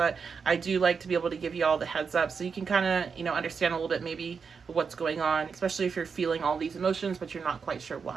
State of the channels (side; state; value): left; quieter; 5.7 dB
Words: I do like to be able to give you all the heads up so you can kind of, understand a little bit maybe what's going on, especially if you're feeling all these emotions, but you're not quite sure